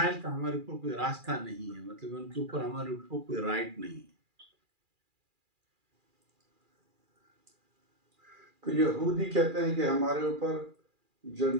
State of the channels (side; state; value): left; late; 2.4 ms